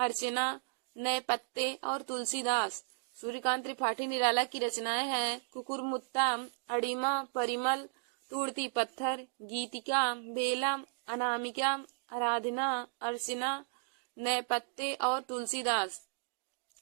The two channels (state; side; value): silent; left; digital silence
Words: नए पत्ते और तुलसीदास। सूर्यकांत त्रिपाठी निराला की रचनाएं हैं कुकुरमुत्ता, अड़िमा, परिमल, तोड़ती पत्थर, गीतिका, बेला, अनामिका, आराधना, अर्चना, नए पत्ते और तुलसीदास।